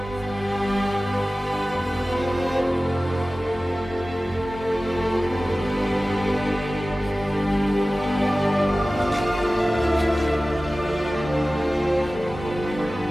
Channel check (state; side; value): normal; both; correlation 0.97